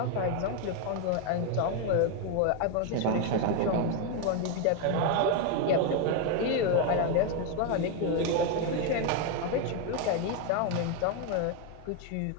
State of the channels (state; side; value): different; both; correlation 0.01